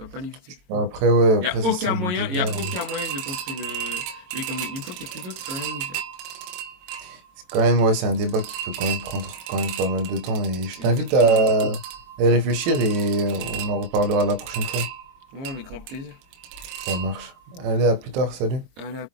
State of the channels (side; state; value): left; late; 23 ms